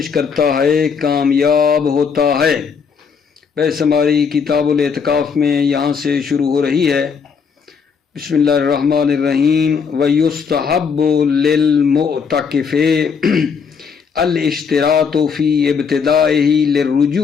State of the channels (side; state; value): right; quieter; 6.1 dB